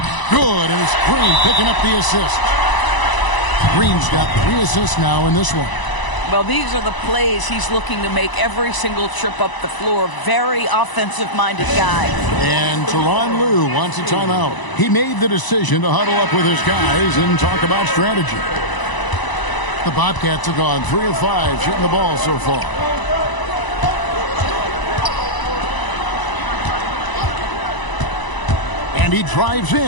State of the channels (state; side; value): late; right; 1.0 ms